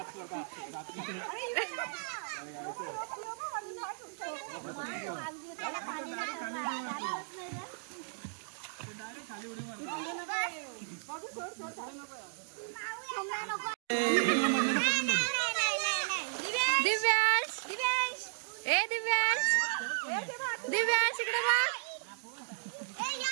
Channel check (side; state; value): left; silent; digital silence